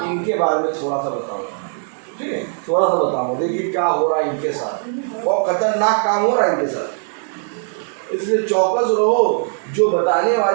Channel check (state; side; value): silent; left; 63 dB below the other